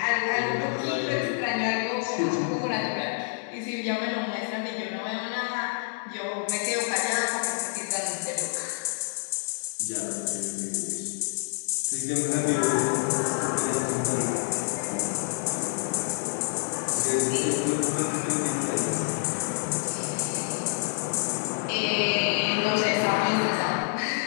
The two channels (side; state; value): right; silent; digital silence